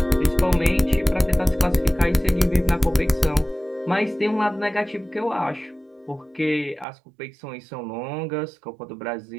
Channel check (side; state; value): left; drops out; at 6.9 s